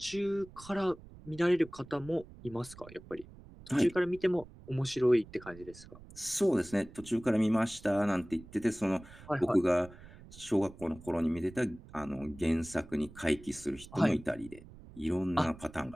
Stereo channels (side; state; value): right; noise; rumble, 19 dB below the sound